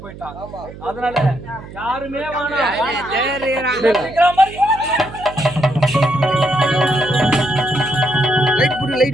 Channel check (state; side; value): noise; right; hum, 15 dB below the sound